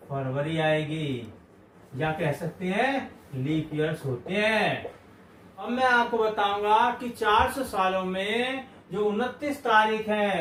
फरवरी आएगी, या कह सकते हैं लीप ईयर्स होते हैं। अब मैं आपको बताऊंगा कि 400 सालों में जो 29 तारीख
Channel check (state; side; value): identical; both; correlation 1.00